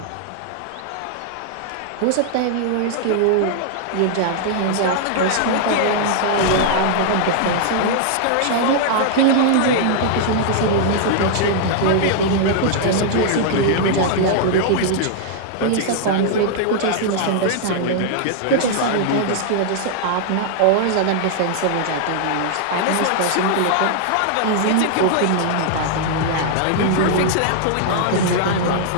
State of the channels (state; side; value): different; both; correlation -0.01